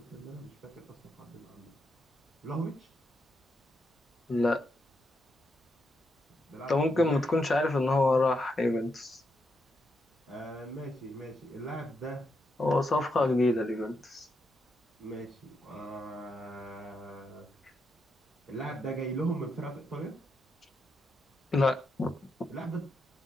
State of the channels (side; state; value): both; normal; correlation 0.82